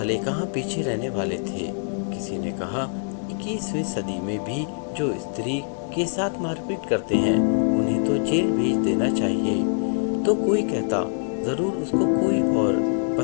कहाँ पीछे रहने वाले थे। किसी ने कहा, 21वीं सदी में भी जो स्त्री के साथ मारपीट करते हैं उन्हें तो जेल भेज देना चाहिए। तो कोई कहता, जरूर उसको कोई और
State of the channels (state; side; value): silent; right; digital silence